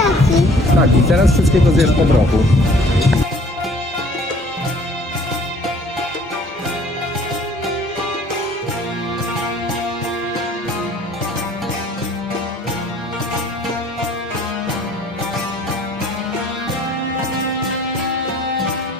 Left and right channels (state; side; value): normal; both; correlation 0.55